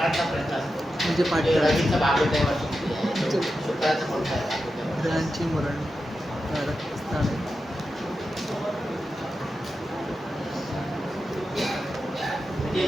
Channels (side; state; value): both; normal; correlation 0.90